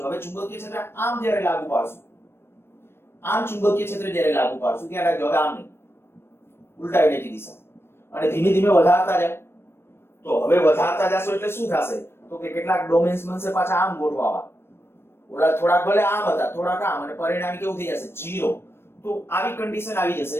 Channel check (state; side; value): late; right; 0.12 ms